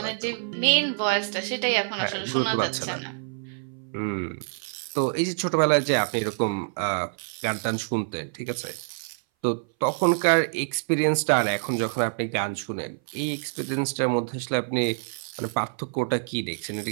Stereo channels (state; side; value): silent; left; 58 dB below the other